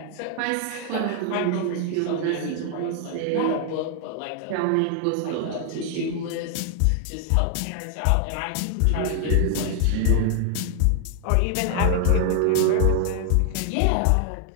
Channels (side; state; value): both; different; correlation 0.00